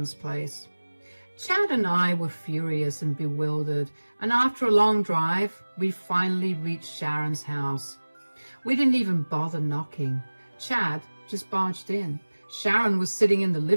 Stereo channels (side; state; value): both; inverted; correlation -1.00